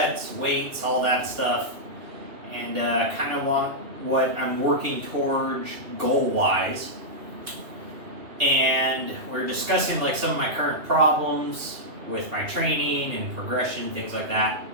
weights, all that stuff, and kind of what I'm working towards goal-wise. And we're discussing like some of my current problems with my training and progression, things like that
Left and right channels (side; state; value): left; late; 2.8 ms